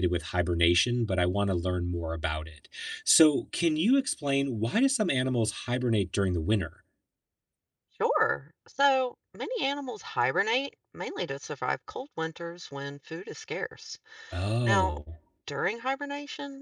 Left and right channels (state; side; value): identical; both; correlation 1.00